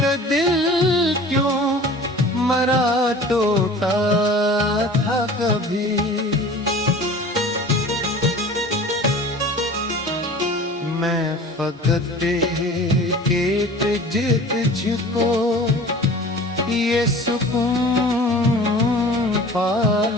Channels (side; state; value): both; normal; correlation 0.41